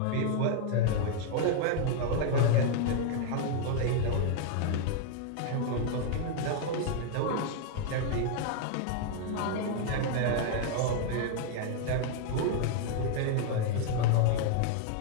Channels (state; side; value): different; both; correlation 0.00